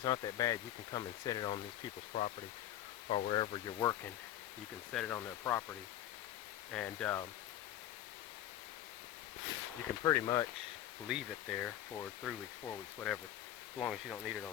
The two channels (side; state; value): right; quieter; 12.3 dB